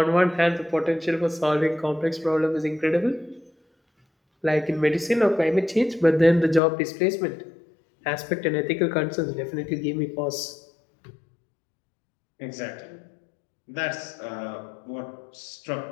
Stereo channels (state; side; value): drops out; right; at 6.6 s